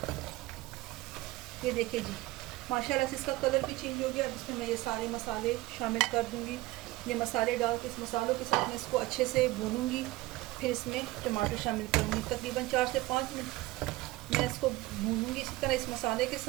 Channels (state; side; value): quieter; left; 19.1 dB